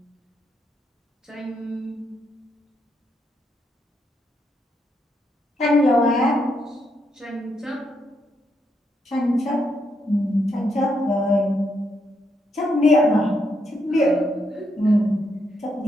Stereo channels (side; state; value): both; normal; correlation 0.79